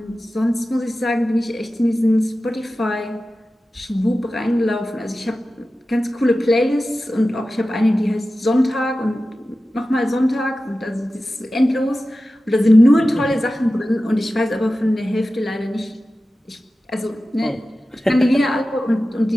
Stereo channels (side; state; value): both; normal; correlation 0.94